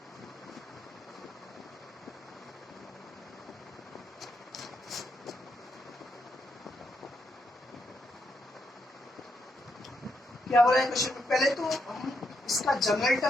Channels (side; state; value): both; normal; correlation 0.80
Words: क्या हो रहा है क्वेश्चन में? पहले तो हम इसका जनरल